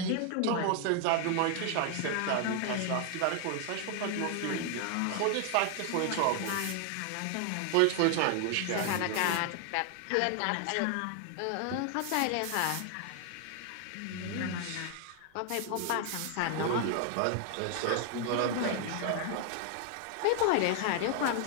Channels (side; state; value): both; different; correlation 0.00